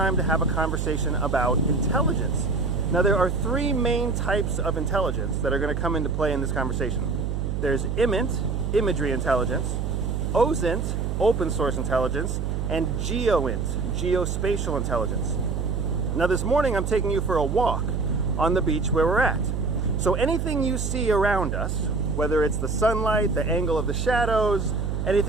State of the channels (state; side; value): noise; right; hum, 1 dB below the sound